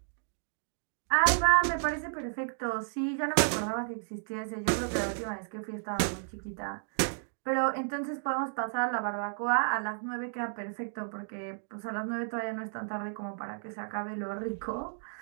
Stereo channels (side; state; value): left; silent; digital silence